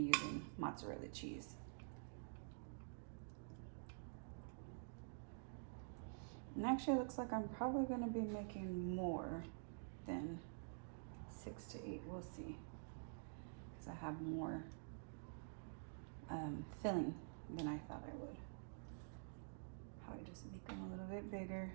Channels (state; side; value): silent; left; digital silence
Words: using mozzarella cheese. And actually, it looks like I'm probably going to be making more than 6 to 8. We'll see. Because I have more filling than I thought I would. Probably just make them a little bit bigger.